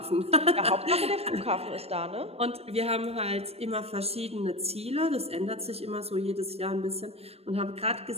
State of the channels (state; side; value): late; left; 0.29 ms